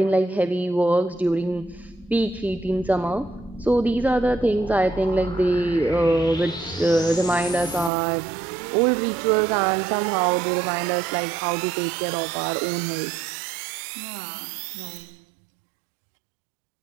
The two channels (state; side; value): drops out; left; at 7.9 s